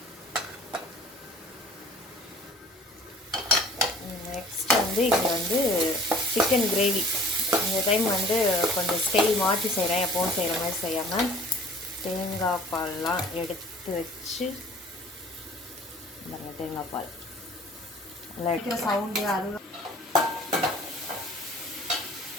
நெக்ஸ்ட் வந்து இங்கே வந்து சிக்கன் கிரேவி. இந்த டைம் வந்து கொஞ்சம் ஸ்டைல் மாற்றி செய்கிறேன், எப்போவும் செய்கிற மாதிரி செய்யாமல் தேங்காய் பால்லாம் எடுத்து வச்சு தேங்காய் பால் நல்லா எடுக்கிற சவுண்டு அது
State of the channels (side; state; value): both; normal; correlation 0.49